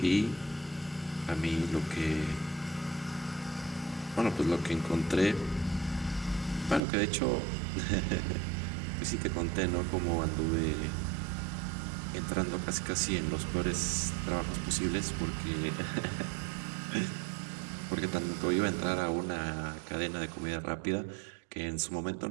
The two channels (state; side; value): drops out; left; at 6.8 s